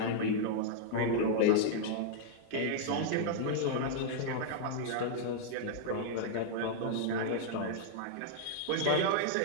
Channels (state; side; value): different; both; correlation -0.01